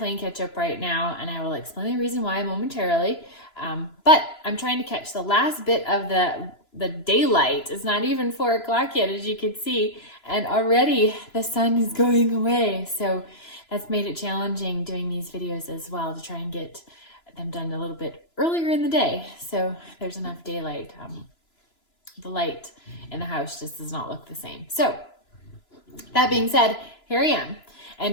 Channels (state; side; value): late; right; 3.0 ms